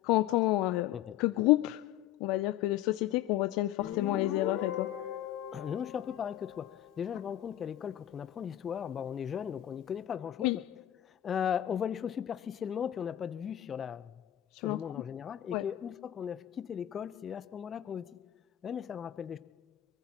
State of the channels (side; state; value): right; quieter; 12.4 dB